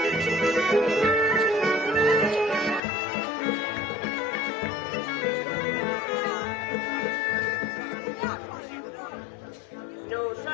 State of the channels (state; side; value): drops out; right; at 2.8 s